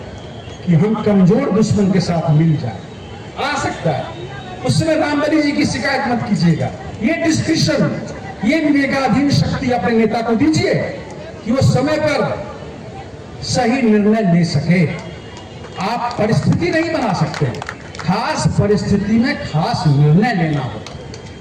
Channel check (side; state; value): both; identical; correlation 1.00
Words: कि हम कमजोर दुश्मन के साथ मिल जाए, आ सकता है। उस समय रामबली जी की शिकायत मत कीजिएगा। ये डिस्क्रिप्शन, ये विवेकाधीन शक्ति अपने नेता को दीजिए कि वो समय पर सही निर्णय ले सके। आप परिस्थिति नहीं बना सकते, खास परिस्थिति में खास निर्णय लेना